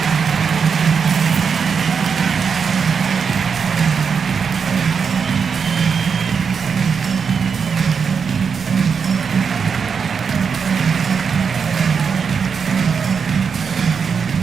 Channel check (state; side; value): quieter; left; 6.1 dB